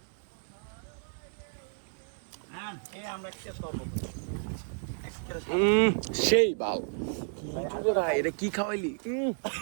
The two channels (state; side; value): silent; left; 57 dB below the other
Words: হ্যাঁ এই আমরা কি করব? সেই বাল কি ভাই, এটা কি খাওয়াইলি?